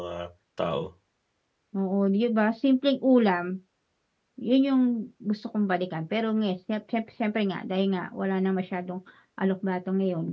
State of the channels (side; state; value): both; identical; correlation 1.00